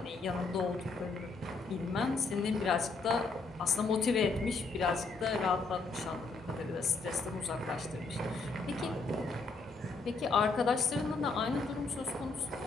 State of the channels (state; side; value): quieter; right; 3.9 dB